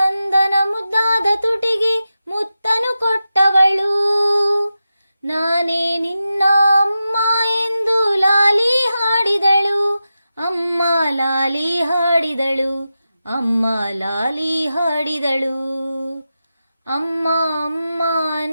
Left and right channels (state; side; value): inverted; both; correlation -0.91